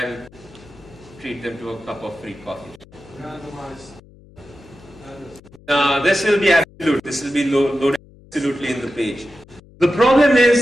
treat them to a cup of free coffee. This will be absolute. This will be loaded absolutely in the page. The problem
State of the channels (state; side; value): noise; left; hum, 24 dB below the sound